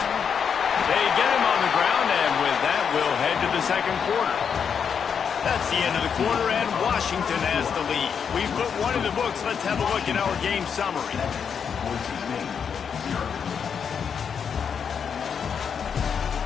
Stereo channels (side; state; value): right; quieter; 7.0 dB